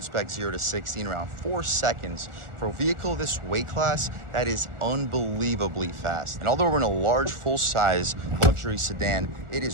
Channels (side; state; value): left; late; 1.4 ms